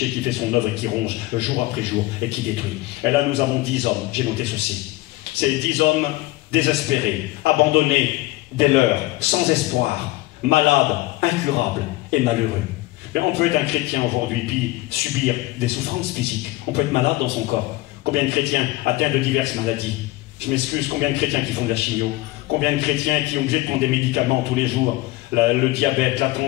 qui fait son œuvre et qui ronge jour après jour et qui détruit. Et là, nous avons 10 hommes. J'ai noté ceci. Ces 10 hommes désespérés, abandonnés dès l'heure, sans espoir, malades, incurables et malheureux. Mais on peut être un chrétien aujourd'hui puis subir des souffrances physiques. On peut être malade dans son corps. Combien de chrétiens atteints de diverses maladies? Je m'excuse, combien de chrétiens qui font de la chimio? Combien de chrétiens qui ont obligé de prendre des médicaments tous les jours? Le diabète, la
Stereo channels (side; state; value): right; quieter; 18.7 dB